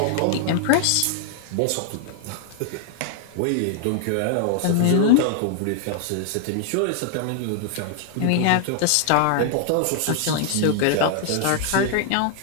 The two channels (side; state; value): both; different; correlation -0.01